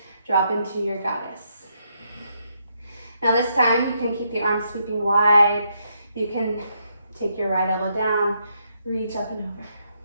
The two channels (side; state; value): both; inverted; correlation -0.77